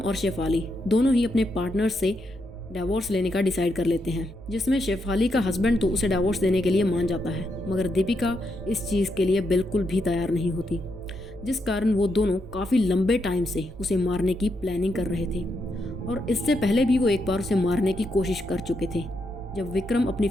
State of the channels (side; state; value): both; normal; correlation 0.81